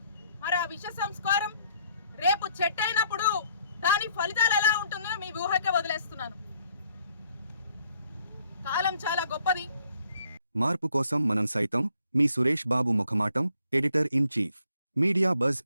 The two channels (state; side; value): inverted; both; correlation -0.67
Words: మరి ఆ విష సంస్కారం రేపు చెట్టు అయినప్పుడు దాని ఫలితాలు ఎలా ఉంటుందో మీ ఊహకే వదిలేస్తున్నాను. కాలం చాలా గొప్పది. మార్పు కోసం మనం సైతం. మీ Suresh Babu ముఖమాటం, editor in chief, media buzz